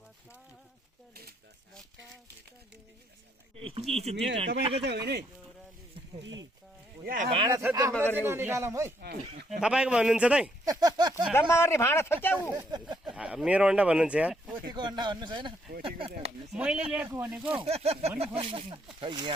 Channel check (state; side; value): normal; both; correlation 0.72